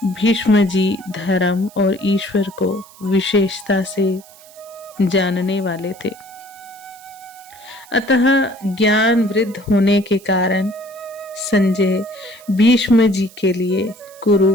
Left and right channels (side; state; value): right; noise; hiss, 23 dB below the sound